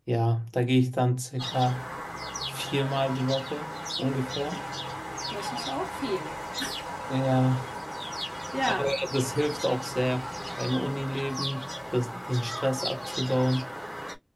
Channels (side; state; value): both; identical; correlation 1.00